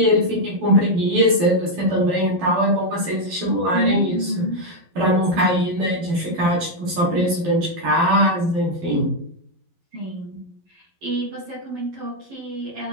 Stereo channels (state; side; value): late; left; 12 ms